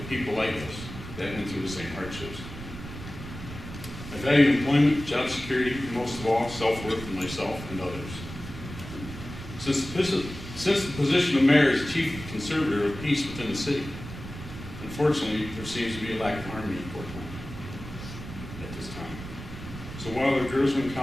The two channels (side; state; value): right; noise; rumble, 11 dB below the sound